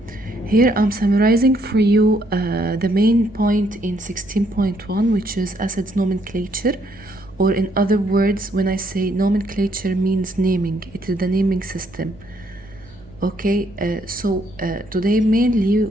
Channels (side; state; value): right; noise; hum, 25 dB below the sound